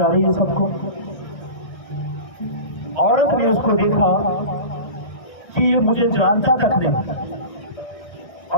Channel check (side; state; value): right; late; 1.3 ms